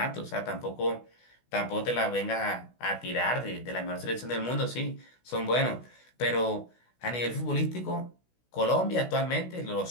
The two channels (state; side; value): late; right; 16 ms